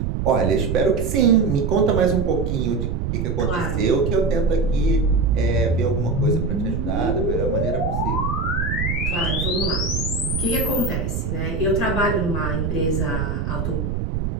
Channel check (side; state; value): right; noise; rumble, 1 dB below the sound